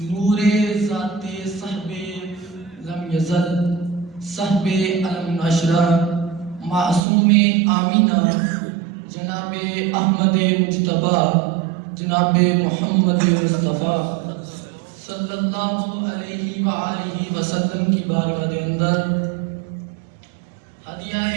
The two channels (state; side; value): drops out; left; at 7.0 s